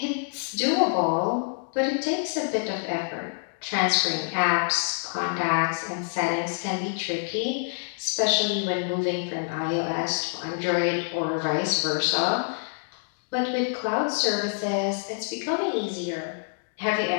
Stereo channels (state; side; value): silent; right; 60 dB below the other